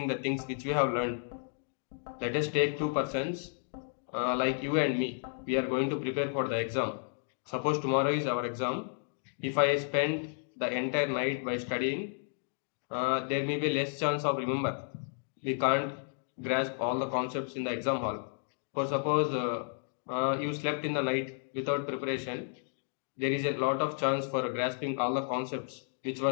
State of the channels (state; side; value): silent; right; digital silence